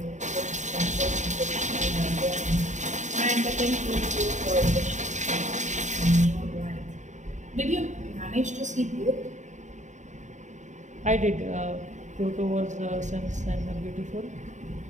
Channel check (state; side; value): late; left; 0.35 ms